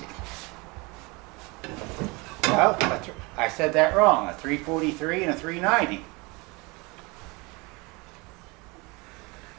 Well, I said that wrong. A 343 and a 390.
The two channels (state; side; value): quieter; left; 26.4 dB